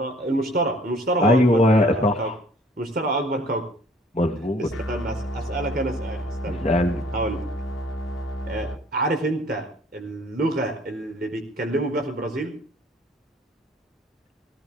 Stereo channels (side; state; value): both; normal; correlation 0.57